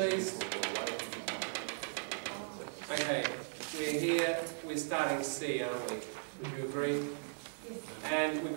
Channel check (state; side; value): silent; left; digital silence